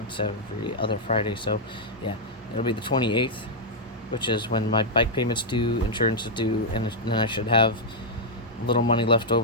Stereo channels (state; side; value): normal; both; correlation -0.05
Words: every other Friday, so yeah, it'll be the 28th, which is when my bike payment's due, insurance is due, and then I should have a little money left